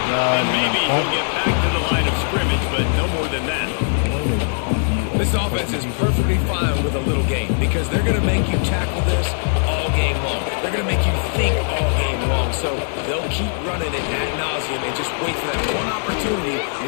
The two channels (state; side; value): silent; right; digital silence